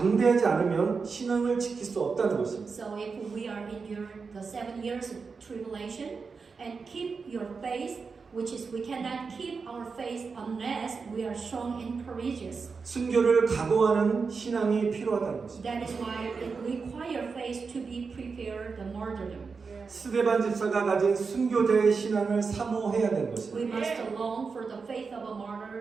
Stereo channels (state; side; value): quieter; left; 5.0 dB